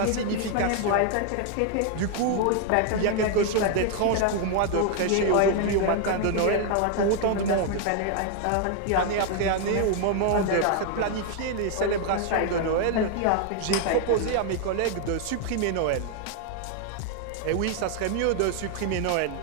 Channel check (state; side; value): different; both; correlation 0.00